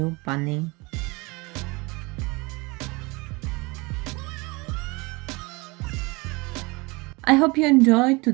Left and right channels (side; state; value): left; quieter; 25.8 dB